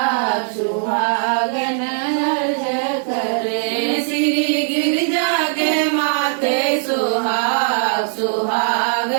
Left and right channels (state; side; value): silent; left; digital silence